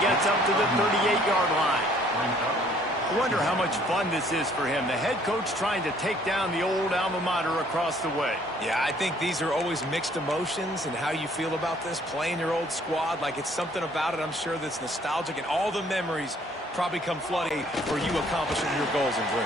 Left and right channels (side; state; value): both; normal; correlation 0.61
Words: gets up to the 38-yard line. I wonder how much fun this is for him. The head coach trying to take down the old alma mater across the way. Yeah, I think these are always mixed emotions and how you feel about this, playing your old squad. Like, it's something about it, I'm sure, that's nostalgic, and all the memories probably come flooding for you accomplishing your goals and